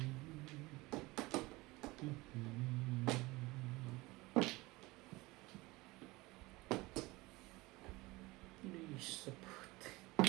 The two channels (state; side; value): quieter; left; 21.6 dB